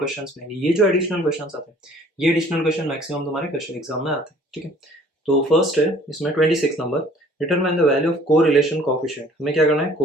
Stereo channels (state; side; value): normal; both; correlation 0.54